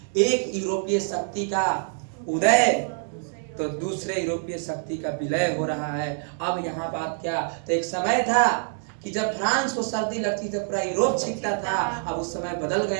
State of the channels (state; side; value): silent; left; 61 dB below the other